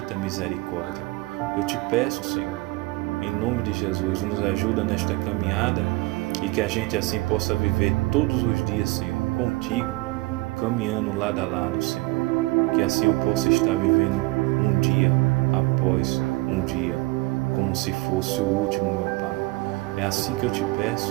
misericórdia. Eu te peço, Senhor, em nome de Jesus, nos ajuda nesta caminhada e que a gente assim possa viver todos os dias, Senhor, contigo, caminhando lado a lado, Senhor. Que assim eu possa estar vivendo um dia após um dia, como se fosse o último, meu Pai. É assim que eu te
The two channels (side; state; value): left; quieter; 22.4 dB